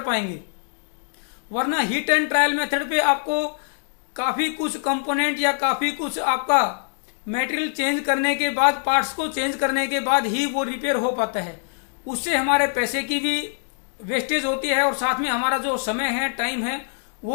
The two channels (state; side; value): silent; right; digital silence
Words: वरना हिट एंड ट्रायल मेथड पे आपको काफ़ी कुछ कंपोनेंट या काफ़ी कुछ आपका मटेरियल चेंज करने के बाद, पार्ट्स को चेंज करने के बाद ही वो रिपेयर हो पाता है। उससे हमारे पैसे की भी वेस्टेज होती है और साथ में हमारा जो समय है, टाइम है,